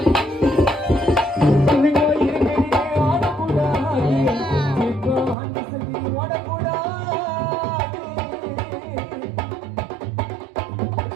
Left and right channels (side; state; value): left; drops out; at 5.4 s